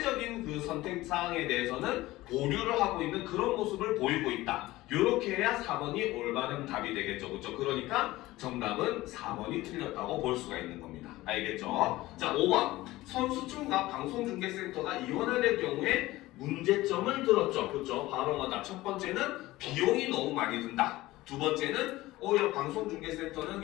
그 선택 사항에 대해서는 보류를 하고 있는 그런 모습을 보이고 있다. 이렇게 해야 4번이 올바른 답이 되겠죠. 그렇죠? 그러니까 정답은 4번이 틀렸다고 볼 수가 있는 겁니다. 알겠죠? 자, 5번. 선수촌과 방송중계센터가 이원화될 경우에 문제점을 들었죠. 그렇죠? 바로 뭐다? 첫 번째는 비용이 너무 많이 든다. 두 번째는 오히려 방송중계센터는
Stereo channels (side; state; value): right; quieter; 17.9 dB